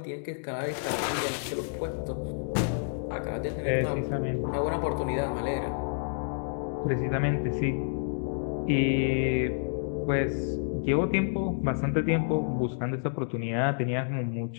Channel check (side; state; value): right; silent; digital silence